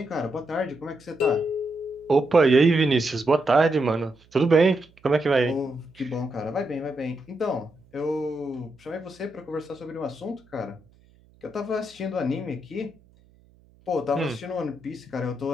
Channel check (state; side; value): noise; right; hum, 30 dB below the sound